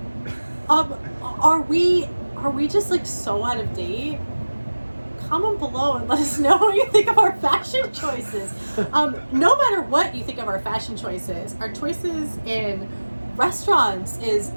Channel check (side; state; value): both; inverted; correlation -1.00